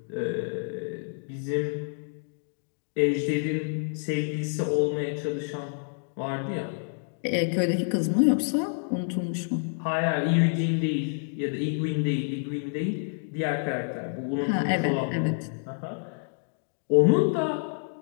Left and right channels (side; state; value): right; silent; digital silence